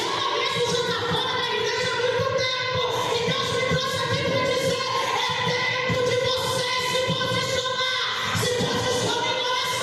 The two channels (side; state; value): both; identical; correlation 1.00